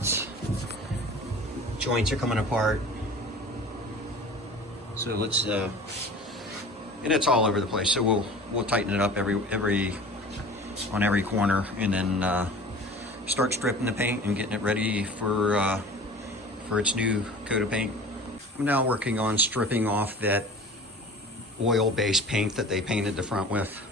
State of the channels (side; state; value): both; normal; correlation 0.40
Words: Joints are coming apart. So let's and it's all over the place. So we'll tighten it up on every corner, and then start stripping the paint and getting it ready for its new coat of paint. I'm now working on stripping off that oil-based paint that they painted the front with.